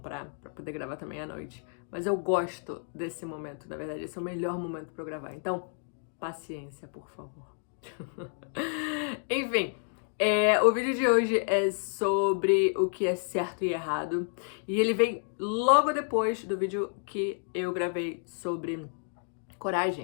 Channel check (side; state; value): right; silent; 56 dB below the other